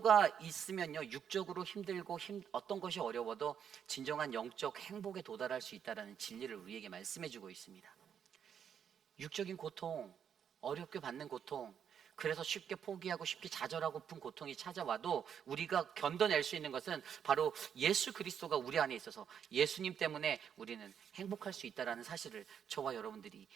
있으면요, 육적으로 힘들고 어떤 것이 어려워도 진정한 영적 행복에 도달할 수 있다는 진리를 우리에게 말씀해 주고 있습니다. 육적인 고통, 어렵게 받는 고통, 그래서 쉽게 포기하고 쉽게 좌절하고픈 고통이 찾아와도 우리가 견뎌낼 수 있는 것은 바로 예수 그리스도가 우리 안에 있어서 예수님 때문에 우리는 행복할 수 있다는 사실을 저와 여러분들이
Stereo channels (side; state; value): left; quieter; 8.2 dB